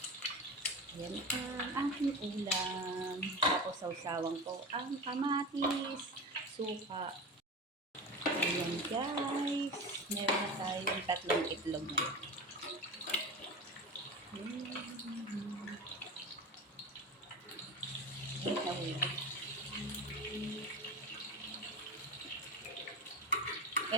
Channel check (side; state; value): both; normal; correlation 0.27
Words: Yan ang aking ulam. Tapos sausawang ko ang kamatis, suka. Ayan guys. Meron na tayong 3 itlog na yun.